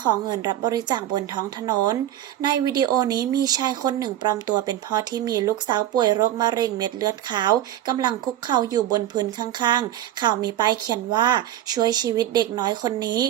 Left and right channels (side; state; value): left; quieter; 12.5 dB